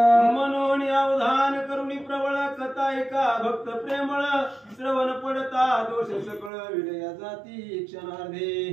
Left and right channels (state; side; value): drops out; left; at 6.5 s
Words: म्हणून अवधान करुणी प्रबळ कथा ऐका भक्त प्रेमळ. श्रवण पडता दोष सकळ विलया जाती क्षणार्धे.